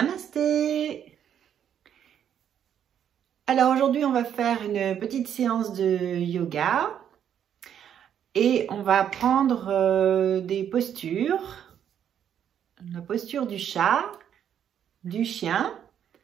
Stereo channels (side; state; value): left; quieter; 9.2 dB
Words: Alors aujourd'hui, on va faire une petite séance de yoga et on va prendre des postures. La posture du chat, du chien,